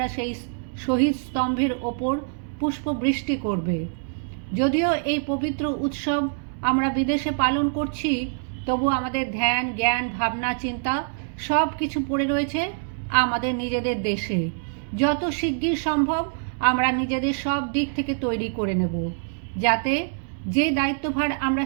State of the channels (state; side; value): silent; left; digital silence